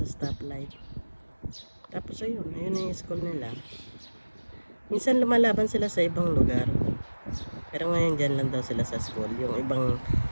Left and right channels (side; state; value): both; inverted; correlation -1.00